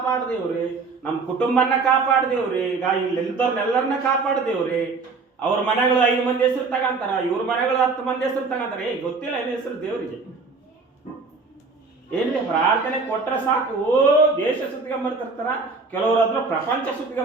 ದೇವ್ರಿ, ನಮ್ಮ ಕುಟುಂಬನ ಕಾಪಾಡು ದೇವ್ರಿ, ಈಗ ಇಲ್ಲಿದ್ದವ್ರನ್ನೆಲ್ಲರನ್ನ ಕಾಪಾಡು ದೇವ್ರಿ. ಅವ್ರ ಮನೆಗಳು 5 ಮಂದಿ ಹೆಸರು ತಗಂತಾರ, ಇವ್ರ ಮನೆಗಳು 10 ಮಂದಿ ಹೆಸರು ತಗಂತಾರೆ. ಗೊತ್ತಿಲ್ಲ ಏನ್ ಹೆಸರು ದೇವ್ರಿಗೆ. ಏನ್ರಿ ಪ್ರಾರ್ಥನೆ ಕೊಟ್ರೆ ಸಾಕು, ದೇಶ ಸುತ್ತಿಗೊಂಬರ್ತಿರ್ತಾರ, ಕೆಲವರು ಅದ್ರ ಪ್ರಪಂಚ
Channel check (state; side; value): quieter; left; 4.3 dB